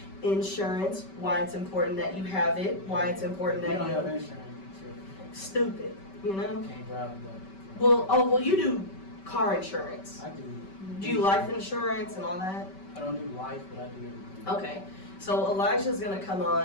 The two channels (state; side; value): late; right; 5.2 ms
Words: insurance, why it's important that you have it, why it's important You that don't have you insurance. stupid, you You know. can't drive that. Well, you do car insurance. I do. Do you life insurance and all that? I don't do life, but I do everything. Okay. So Elijah's gonna come